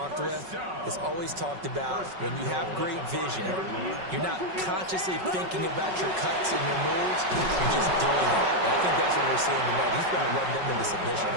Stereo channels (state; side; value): late; left; 5.4 ms